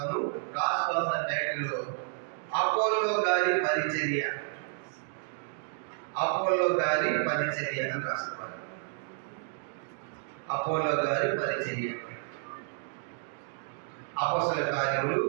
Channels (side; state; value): left; silent; digital silence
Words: రాసుకోవాల్సిన టైటిల్: అపోల్లో గారి పరిచర్య. అపోల్లో గారి పరిచర్య అని రాసుకోవాలి. అపోల్లో గారి పరిచర్య. అపోస్తలుల కార్యములు